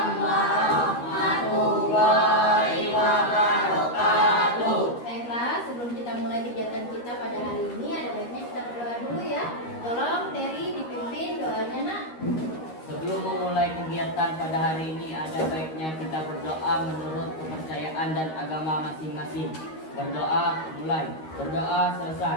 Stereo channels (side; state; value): right; late; 13 ms